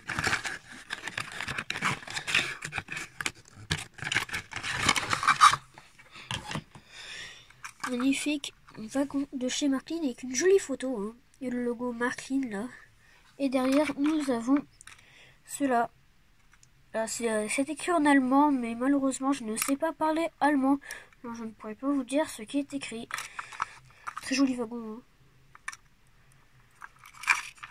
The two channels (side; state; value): both; identical; correlation 1.00